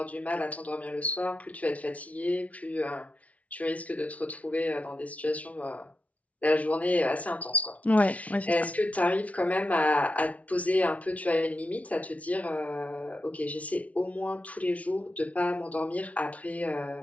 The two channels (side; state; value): right; late; 0.067 ms